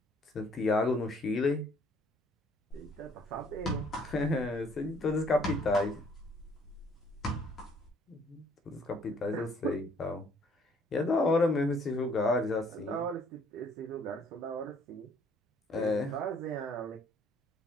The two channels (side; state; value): both; normal; correlation 0.62